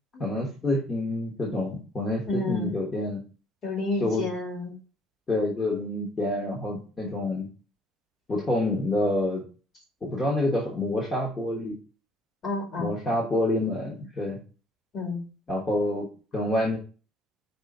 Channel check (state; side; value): normal; both; correlation 0.62